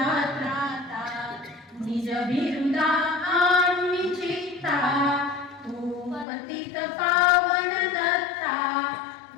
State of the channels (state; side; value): drops out; right; at 6.2 s